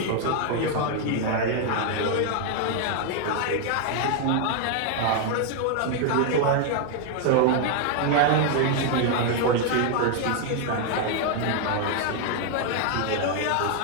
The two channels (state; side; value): different; both; correlation 0.00